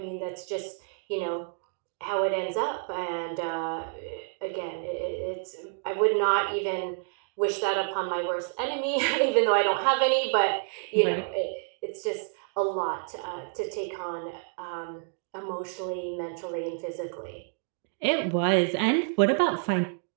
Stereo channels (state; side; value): silent; left; 59 dB below the other